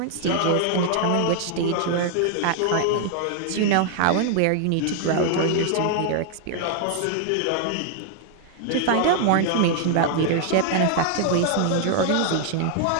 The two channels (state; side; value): different; both; correlation 0.00